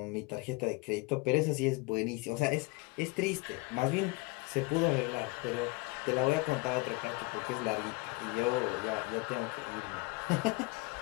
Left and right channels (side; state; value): right; quieter; 26.4 dB